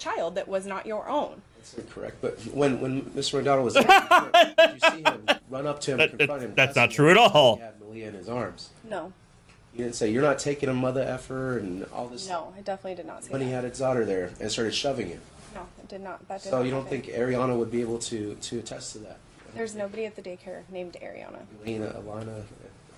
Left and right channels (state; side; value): identical; both; correlation 1.00